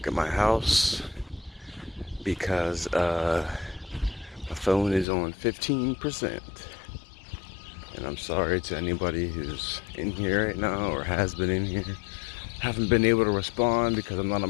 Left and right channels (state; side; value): drops out; right; at 5.1 s